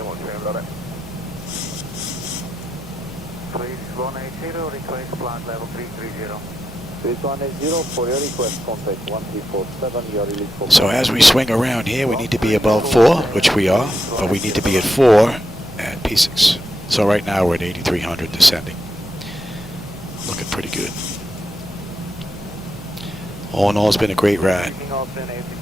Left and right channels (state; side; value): noise; left; hum, 19 dB below the sound